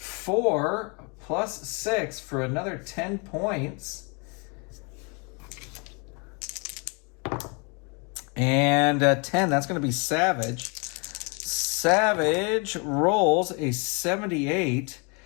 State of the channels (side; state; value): right; quieter; 33.3 dB